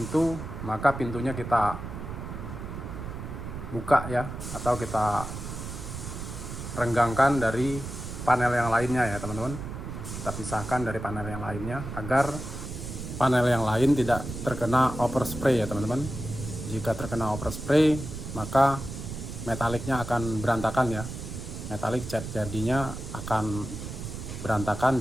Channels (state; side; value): noise; right; rumble, 8 dB below the sound